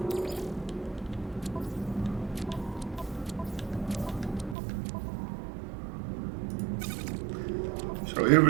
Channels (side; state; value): left; drops out; at 4.5 s